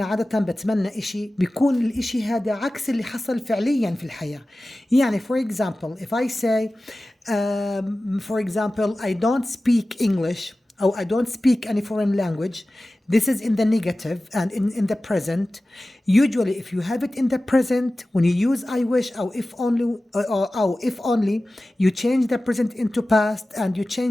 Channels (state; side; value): normal; both; correlation 0.96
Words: عادة بتمنى إشي بيكون الإشي هذا عكس اللي حصل فعليا في الحياة. يعني for example if I say for example I don't speak English or I don't speak any foreign language, this is in the negative and in the present. Usually if you have it in the present, when you use I wish or if only, you change the present into past and you